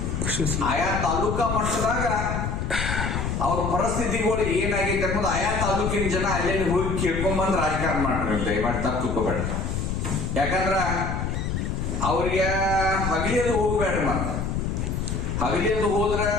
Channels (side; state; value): left; noise; rumble, 2 dB below the sound